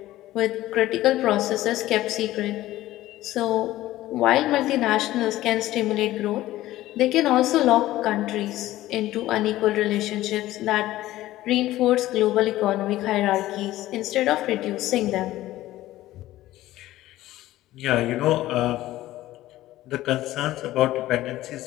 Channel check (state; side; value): quieter; right; 15.5 dB